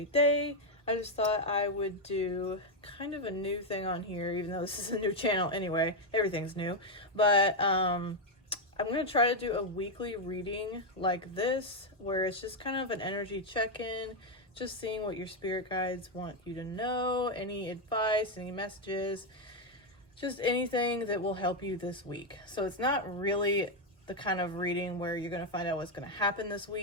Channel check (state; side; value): normal; both; correlation 0.03